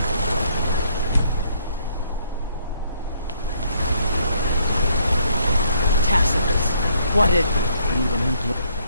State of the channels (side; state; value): both; inverted; correlation -0.68